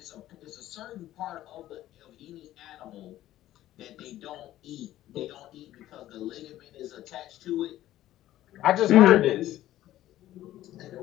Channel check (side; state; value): right; quieter; 14.0 dB